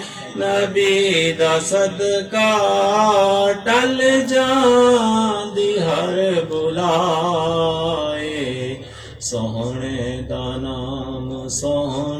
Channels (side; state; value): both; identical; correlation 1.00